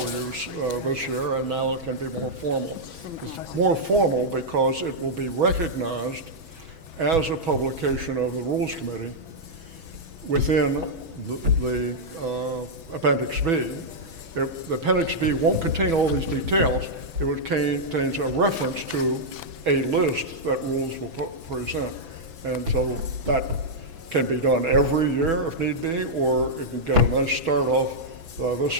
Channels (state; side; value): late; left; 6.1 ms